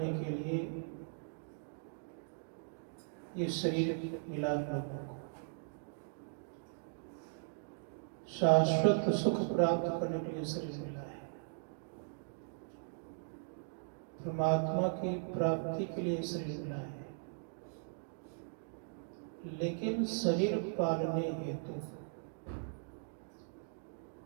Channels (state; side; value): silent; left; digital silence